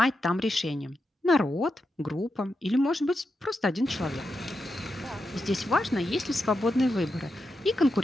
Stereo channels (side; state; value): both; normal; correlation 0.87